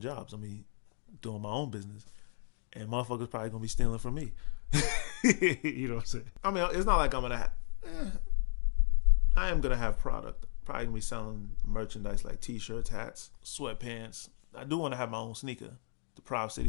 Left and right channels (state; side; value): silent; right; digital silence